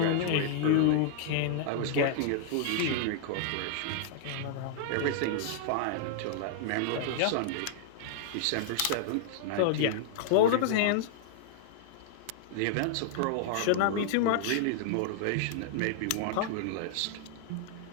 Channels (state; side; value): different; both; correlation -0.01